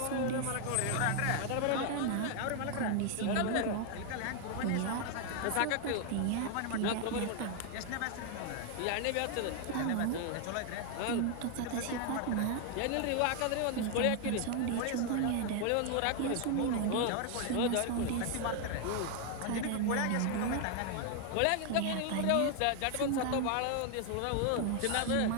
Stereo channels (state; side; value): different; both; correlation 0.00